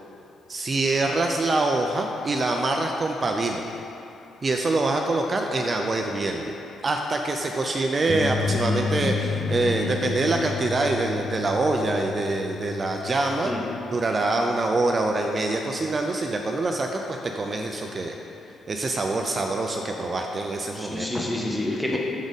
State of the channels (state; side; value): normal; both; correlation 0.84